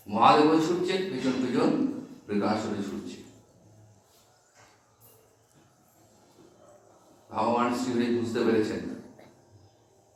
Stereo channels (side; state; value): both; identical; correlation 1.00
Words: মহাদেব ছুটছেন, পিছন পিছন বৃকাসুরে ছুটছে। ভগবান শ্রীহরি বুঝতে পেরেছেন